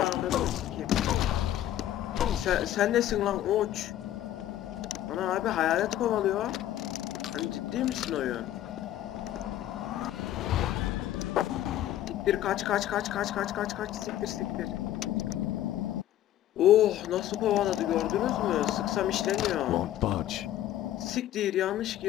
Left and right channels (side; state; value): right; quieter; 12.7 dB